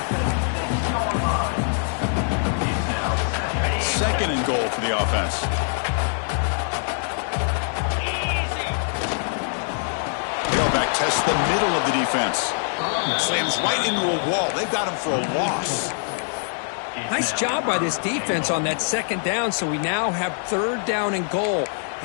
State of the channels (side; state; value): right; silent; digital silence